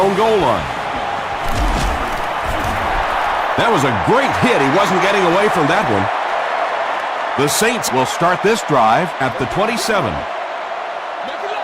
goal line. That was a great hit. He wasn't getting away from that one. The Saints will start this drive at the 27.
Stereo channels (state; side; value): identical; both; correlation 1.00